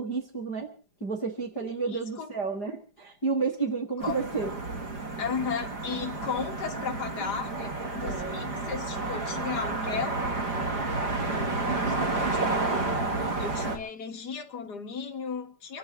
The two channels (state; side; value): late; right; 4.9 ms